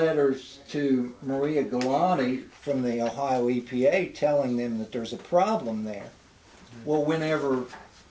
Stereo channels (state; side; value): identical; both; correlation 1.00